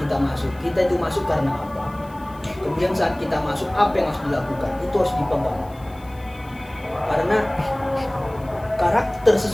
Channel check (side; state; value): left; noise; hiss, 27 dB below the sound